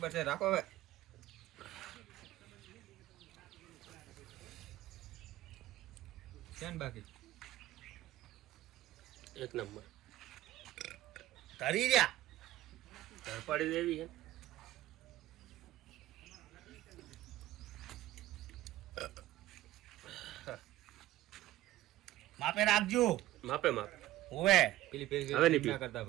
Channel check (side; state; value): left; quieter; 15.5 dB